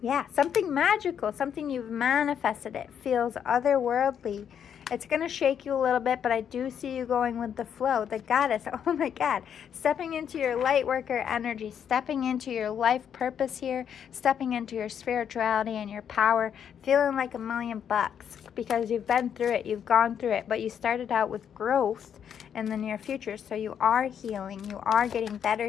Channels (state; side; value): quieter; right; 8.4 dB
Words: something magical, something you've manifested. It feels otherworldly. It's going to shake you a little bit, but I do see you going with the flow. The goddess, oh my God. Stepping into your light worker energy, stepping into your life purpose here, stepping into your spirituality and your power, feeling like $1,000,000 because you've been through it, you've gone through it, but you started out with growth in the near future. So you are healing, you are getting better